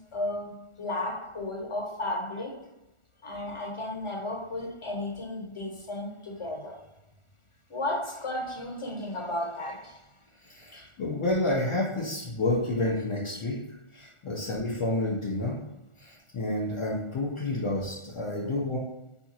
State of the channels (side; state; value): right; late; 1.4 ms